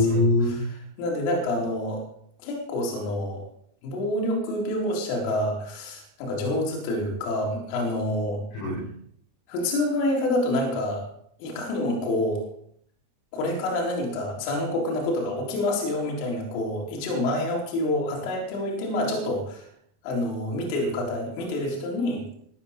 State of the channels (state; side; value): late; right; 30 ms